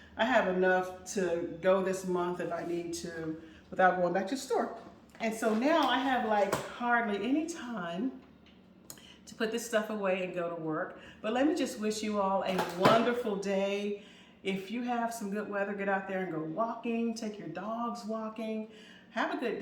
I have enough to go this month if I need to without going back to the store. And so now I have like hardly any time to put this stuff away and go to work. But let me just wish you all a wonderful day. If you have some good weather, get out there and go walking, take your dogs walking. Have a good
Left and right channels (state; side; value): identical; both; correlation 1.00